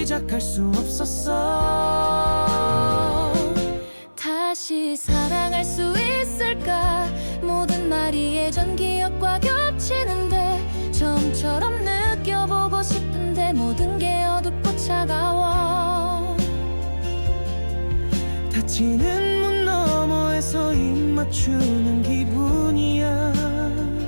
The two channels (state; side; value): inverted; both; correlation -1.00